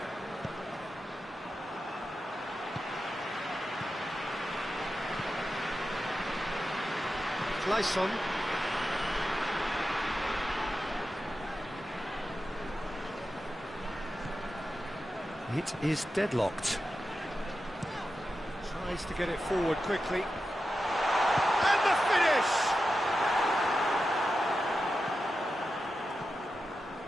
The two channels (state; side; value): normal; both; correlation 0.91